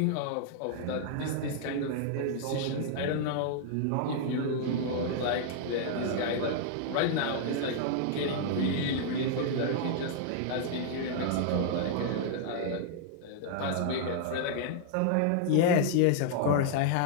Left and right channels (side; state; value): both; different; correlation -0.01